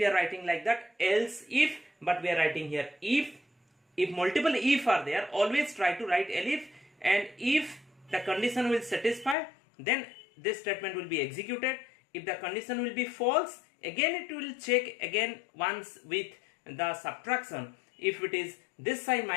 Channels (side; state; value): right; drops out; at 9.3 s